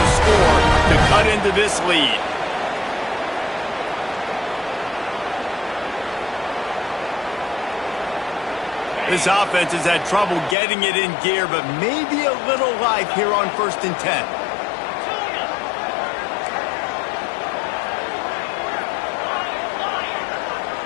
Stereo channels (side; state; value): right; drops out; at 10.6 s